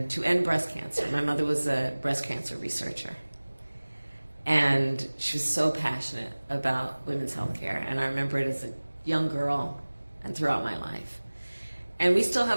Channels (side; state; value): both; inverted; correlation -1.00